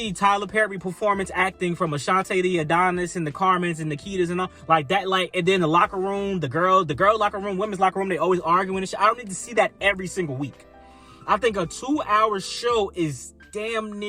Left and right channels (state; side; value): identical; both; correlation 1.00